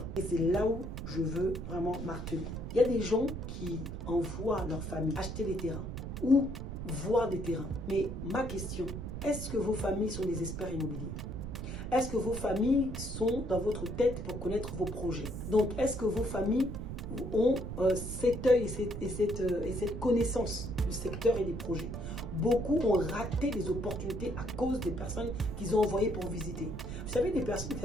Et c'est là où je veux vraiment marteler. Il y a des gens qui envoient leur famille acheter des terrains ou voir des terrains. Mais ma question, est-ce que vos familles sont des experts immobiliers? Est-ce que vos familles sont dans votre tête pour connaître vos projets? Donc, est-ce que vos familles ont cet œil et cette connaissance du secteur et des projets? Beaucoup ont raté des opportunités à cause des personnes qu'ils ont envoyées pour visiter. Vous savez, des personnes qui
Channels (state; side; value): noise; right; rumble, 6 dB below the sound